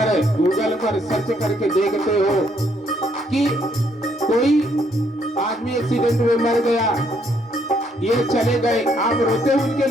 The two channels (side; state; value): both; normal; correlation 0.70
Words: गूगल पर सर्च करके देखते हो कि कोई आदमी एक्सीडेंट में मर गया, ये चले गए, आप रोते हो उनके